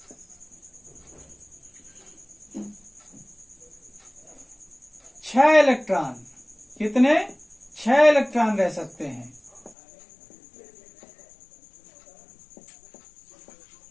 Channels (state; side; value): drops out; right; at 9.8 s